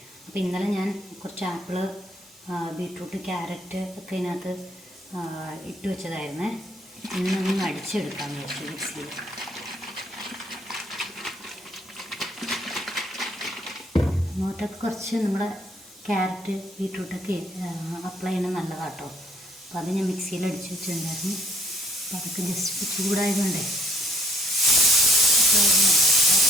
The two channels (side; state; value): both; normal; correlation 0.64